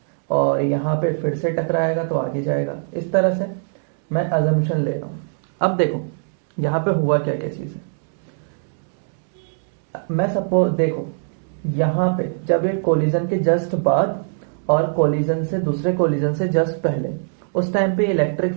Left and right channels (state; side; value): silent; left; digital silence